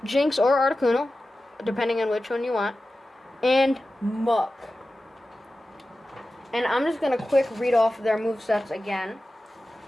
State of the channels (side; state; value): both; normal; correlation 0.94